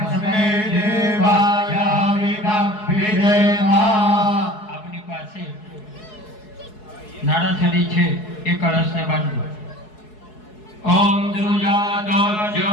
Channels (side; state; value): right; late; 4.7 ms